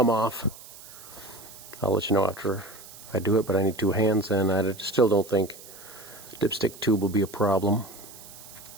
off. I'll let you know after I do it, but I need two hands, and I still don't think the dipstick tube will be a problem.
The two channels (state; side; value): noise; right; hiss, 18 dB below the sound